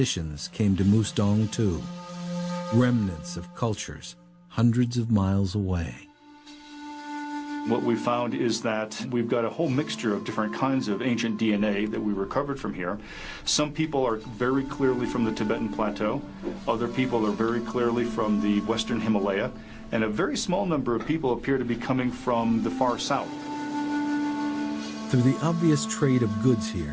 came to Mustang too, remnants of cultures hundreds of miles away. What we found is that we've got a whole mixture of different kinds of ancient DNA that we recovered from here. Some people are very clearly from the Tibetan Plateau. Other people are very clearly from the Western Himalaya. And a very small number of people appear to be coming from the far south. Through the obvious trade of goods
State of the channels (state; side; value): identical; both; correlation 1.00